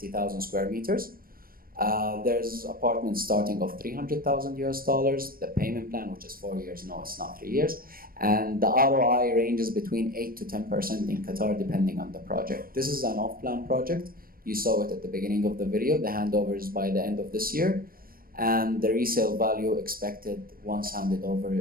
square meters. There's apartments starting of 300,000 US dollars, the payment plan, which is 4 years, no, it's not 3 years. And the ROI ranges between 8 to 10% in Qatar, depending on the project. This is an off-plan project. You saw it at the beginning of the video. The handover is by the end of this year. And the resale value expected once handed over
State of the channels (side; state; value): left; late; 0.42 ms